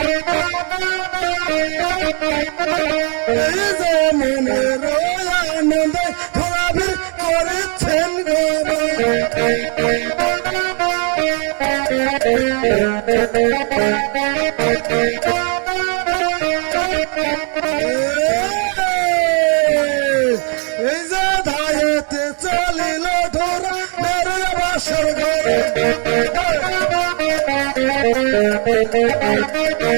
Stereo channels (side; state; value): left; quieter; 39.2 dB